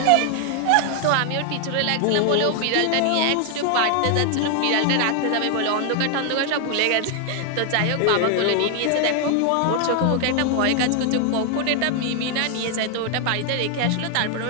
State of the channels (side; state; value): both; different; correlation 0.00